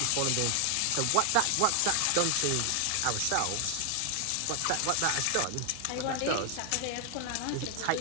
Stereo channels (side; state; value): both; different; correlation 0.00